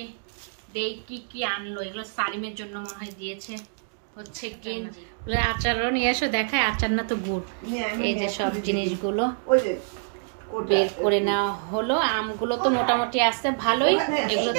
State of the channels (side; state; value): left; silent; digital silence